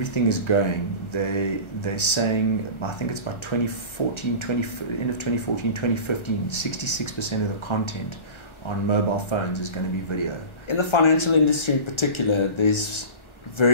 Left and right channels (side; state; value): right; late; 1.3 ms